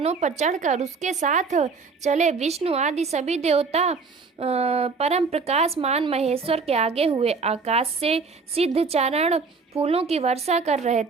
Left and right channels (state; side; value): quieter; left; 4.7 dB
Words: पर चढ़कर उसके साथ चले। विष्णु आदि सभी देवता परम प्रकाशमान महेश्वर के आगे हुए। आकाश से सिद्ध चारण फूलों की वर्षा कर रहे